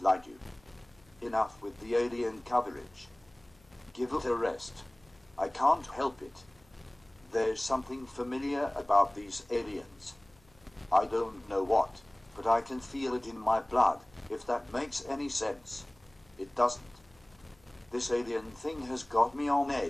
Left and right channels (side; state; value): left; noise; hum, 30 dB below the sound